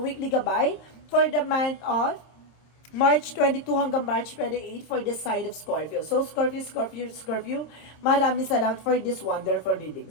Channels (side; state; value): right; late; 26 ms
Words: gabay for the month of March 22 hanggang March 28 for the sign of Scorpio. So Scorpio, maraming salamat for this wonderful